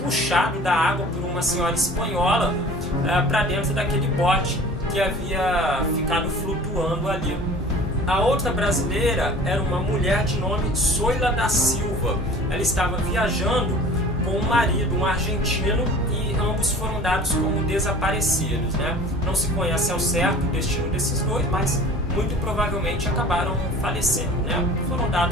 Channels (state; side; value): normal; both; correlation 0.44